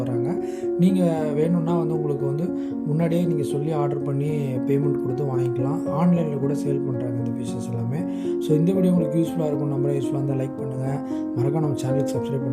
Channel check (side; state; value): both; identical; correlation 1.00